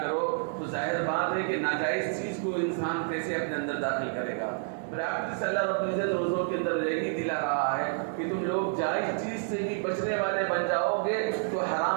کرو، تو ظاہر بات ہے کہ ناجائز چیز کو انسان کیسے اپنے اندر داخل کرے گا۔ پریکٹس اللہ رب العزت روزوں کے اندر یہی دلا رہا ہے کہ تم لوگ جائز چیز سے بھی بچنے والے بن جاؤ گے تو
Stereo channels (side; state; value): left; silent; 58 dB below the other